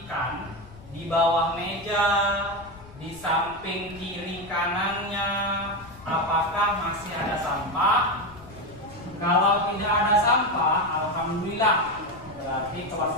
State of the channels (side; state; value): left; noise; rumble, 20 dB below the sound